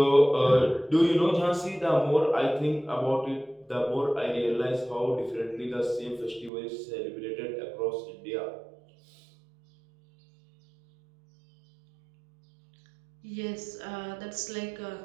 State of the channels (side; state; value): left; drops out; at 6.5 s